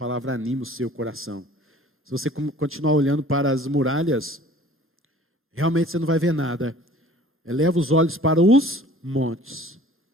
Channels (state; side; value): normal; both; correlation 0.49